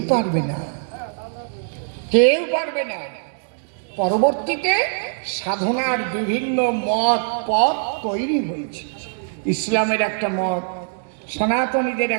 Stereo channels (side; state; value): left; silent; 64 dB below the other